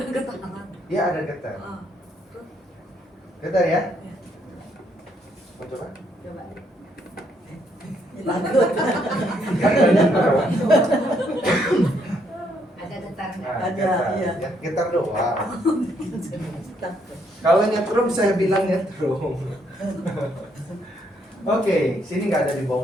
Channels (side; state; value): both; normal; correlation 0.72